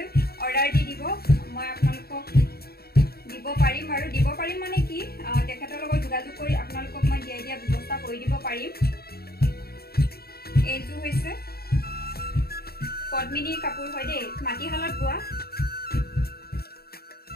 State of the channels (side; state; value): right; late; 0.45 ms